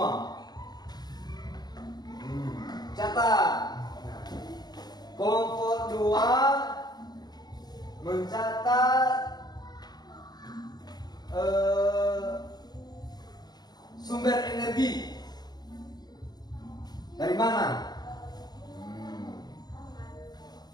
Catat. Nah, kelompok 2 mencatat sumber energi dari mana.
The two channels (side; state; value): right; late; 0.20 ms